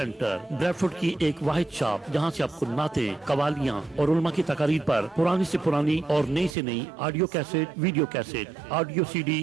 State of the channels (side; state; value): left; drops out; at 6.6 s